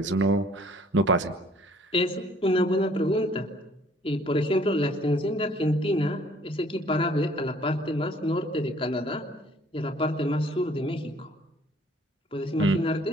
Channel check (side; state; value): both; normal; correlation 0.58